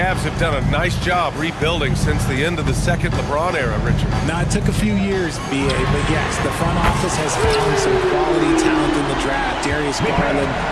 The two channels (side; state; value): both; identical; correlation 1.00